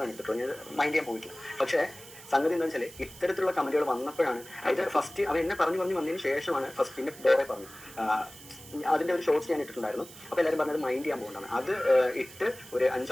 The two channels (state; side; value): noise; right; hiss, 18 dB below the sound